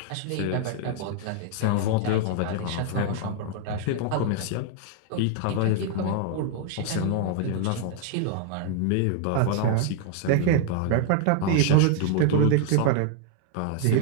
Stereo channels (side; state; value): both; different; correlation 0.00